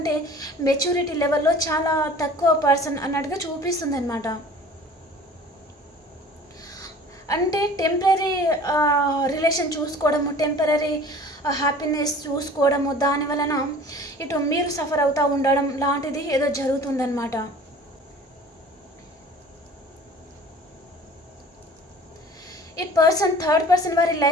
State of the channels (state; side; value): normal; both; correlation 0.45